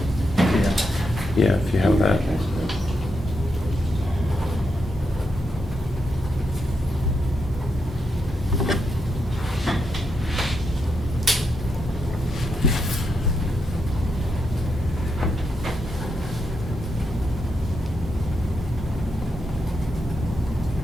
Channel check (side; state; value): both; normal; correlation 0.83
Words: Yeah, if you have that.